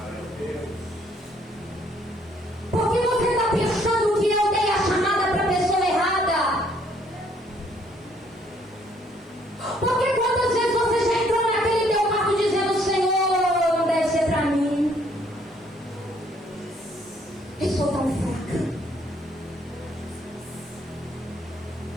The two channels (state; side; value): normal; both; correlation 0.65